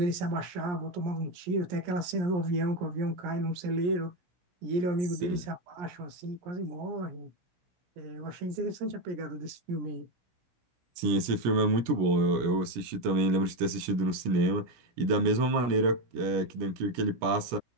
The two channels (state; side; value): late; left; 17 ms